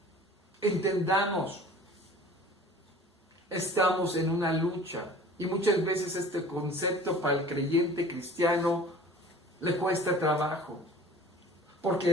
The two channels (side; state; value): both; normal; correlation 0.45